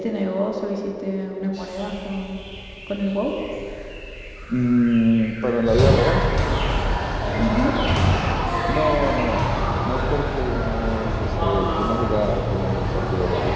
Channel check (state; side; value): identical; both; correlation 1.00